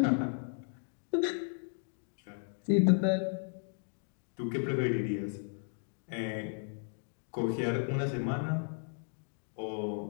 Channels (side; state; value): right; silent; 55 dB below the other